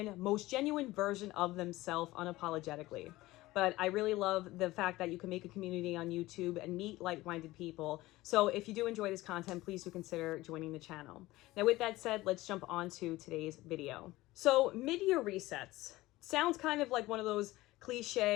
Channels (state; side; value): quieter; right; 18.3 dB